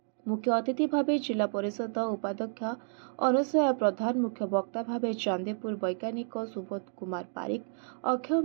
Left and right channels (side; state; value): left; silent; 57 dB below the other